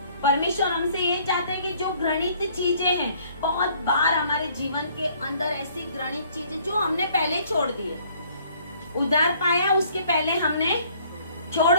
परमेश्वर हमसे ये चाहते हैं कि जो घृणित चीजें हैं, बहुत बार हमारे जीवन के अंदर ऐसी घृणित चीजें जो हमने पहले छोड़ दी है, उद्धार पाया उसके पहले हमने छोड़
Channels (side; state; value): both; inverted; correlation -0.60